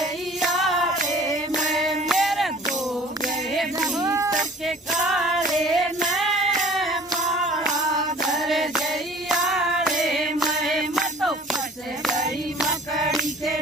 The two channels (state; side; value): normal; both; correlation 0.48